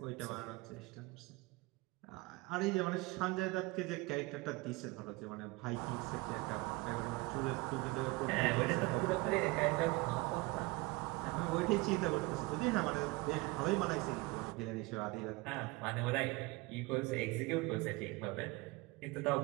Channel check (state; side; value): quieter; left; 23.6 dB